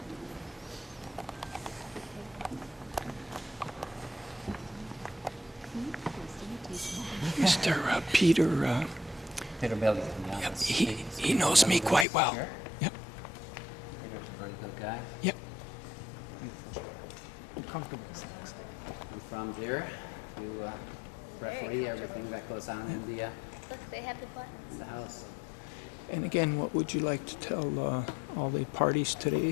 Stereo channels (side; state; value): right; drops out; at 12.1 s